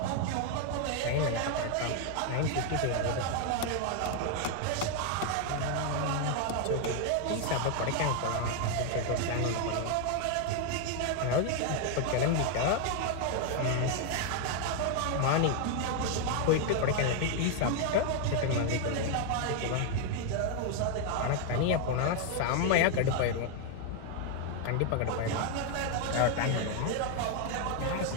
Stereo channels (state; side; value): different; both; correlation 0.00